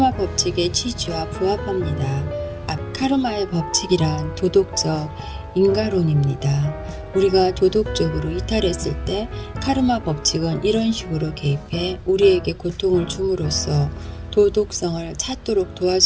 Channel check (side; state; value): both; identical; correlation 1.00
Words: 법칙의 취지와 부합합니다. 카르마의 법칙이란 도덕적 인가론입니다. 우리가 도덕적으로 이탈했을 때 카르마 법칙은 이런 식으로 개입해 우리에게 고통을 줌으로써 도덕성을 찾도록